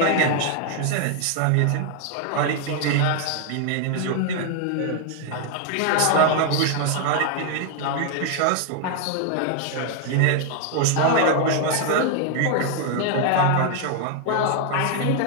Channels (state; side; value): different; both; correlation 0.00